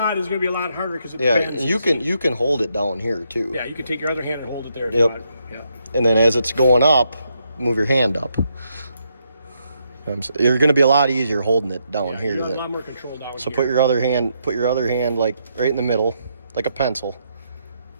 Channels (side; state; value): both; inverted; correlation -0.78